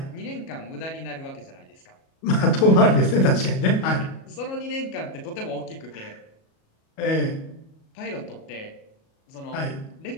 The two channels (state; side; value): late; right; 37 ms